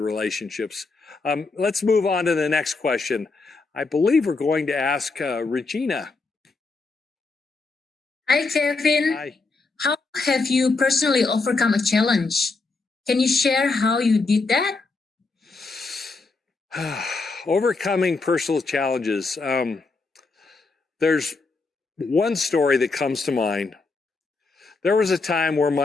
Let's move on to the next question. I believe we're going to ask Regina. Hi, Kevin. Hi. How have you personally overcome a challenge? Can you share how you did that? Overcoming personal challenges. There's one story that comes to mind. There was a time where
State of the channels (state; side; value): quieter; right; 3.9 dB